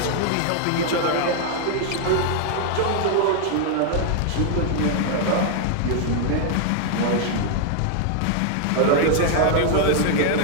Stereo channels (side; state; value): both; different; correlation 0.00